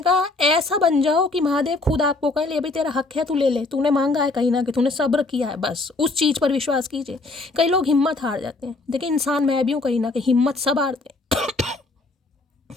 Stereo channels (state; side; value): quieter; right; 3.3 dB